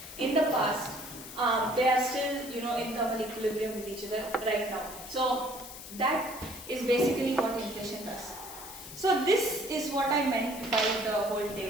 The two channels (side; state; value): left; noise; hiss, 13 dB below the sound